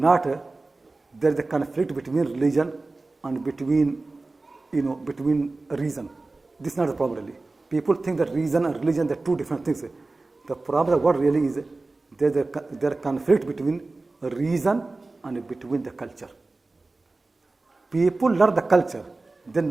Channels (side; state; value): left; quieter; 3.3 dB